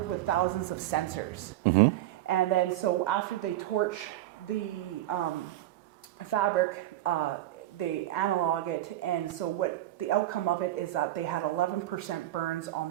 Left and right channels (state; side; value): quieter; left; 14.4 dB